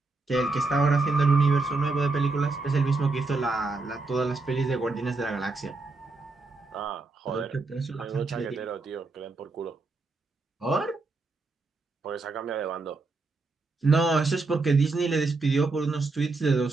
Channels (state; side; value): quieter; left; 3.6 dB